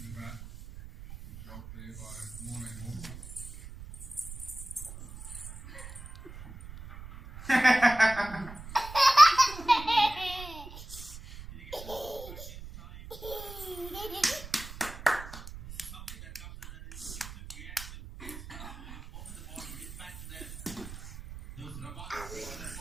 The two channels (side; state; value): right; noise; rumble, 13 dB below the sound